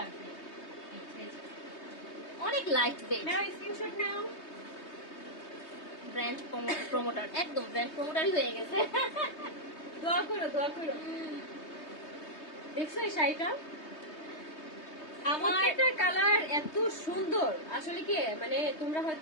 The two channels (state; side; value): late; right; 3.2 ms